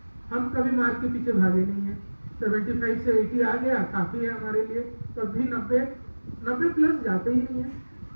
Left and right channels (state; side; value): inverted; both; correlation -1.00